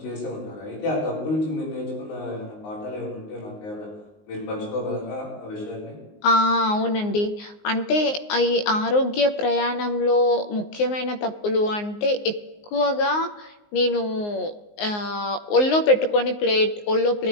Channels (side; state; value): right; late; 19 ms